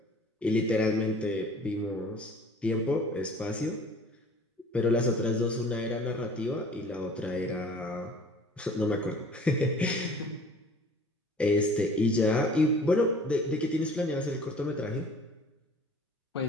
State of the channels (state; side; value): normal; both; correlation 0.49